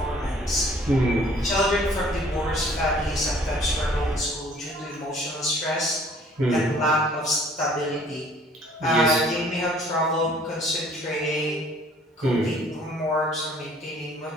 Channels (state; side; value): normal; both; correlation 0.56